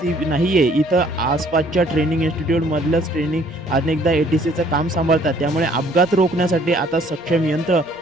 नाही आहे. इथं आसपासच्या ट्रेनिंग इन्स्टिट्यूटमधलंच ट्रेनिंग अनेकदा ATCचं काम सांभाळतात. त्यामुळे अपघात रोखण्यासाठी आता सक्षम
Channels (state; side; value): normal; both; correlation 0.60